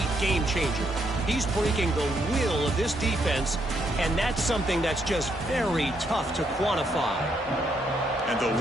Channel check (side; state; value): both; normal; correlation 0.75